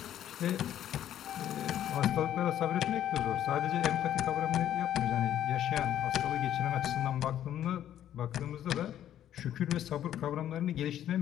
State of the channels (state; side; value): quieter; right; 11.2 dB